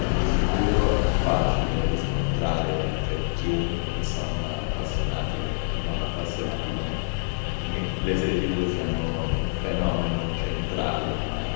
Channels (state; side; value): silent; right; digital silence